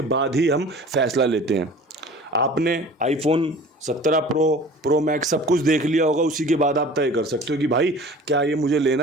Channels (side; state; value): both; normal; correlation 0.43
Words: बाद ही हम फैसला लेते हैं। आपने आईफोन 17 प्रो मैक्स सब कुछ देख लिया होगा, उसी के बाद आप तय कर सकते हो कि भाई क्या ये मुझे